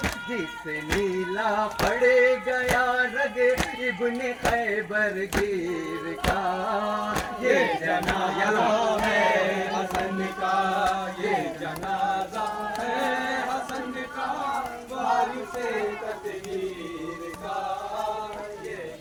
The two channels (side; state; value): both; identical; correlation 1.00